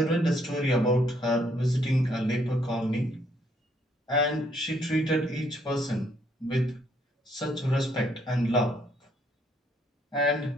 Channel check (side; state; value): both; normal; correlation 0.69